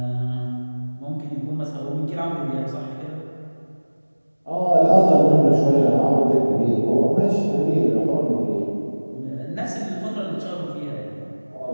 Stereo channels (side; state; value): both; inverted; correlation -1.00